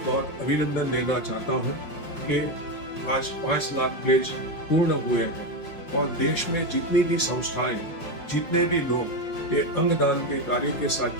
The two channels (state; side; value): late; right; 5.5 ms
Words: बहुत अभिनंदन देना चाहता हूँ कि आज 5 लाख प्लेज पूर्ण हुए हैं और देश में जितनी भी संस्थाएं, जितने भी लोग ये अंगदान के कार्य के साथ